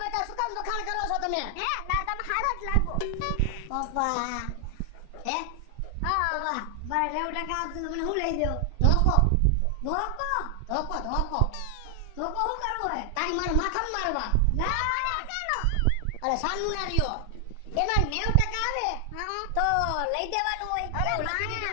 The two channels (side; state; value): both; different; correlation 0.00